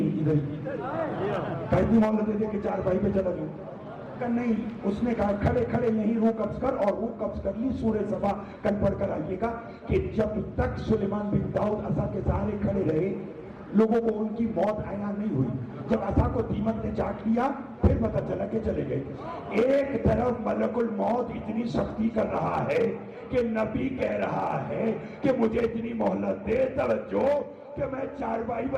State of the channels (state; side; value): identical; both; correlation 1.00